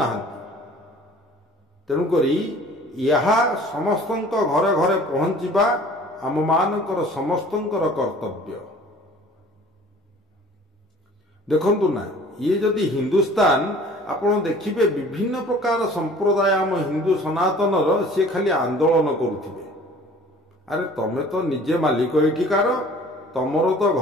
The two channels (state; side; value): normal; both; correlation 0.49